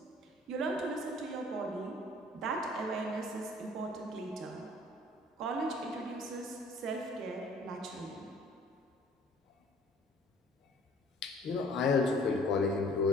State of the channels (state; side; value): normal; both; correlation 0.54